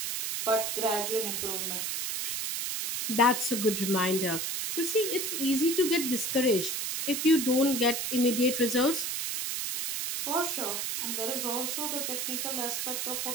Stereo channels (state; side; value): noise; right; hiss, 2 dB below the sound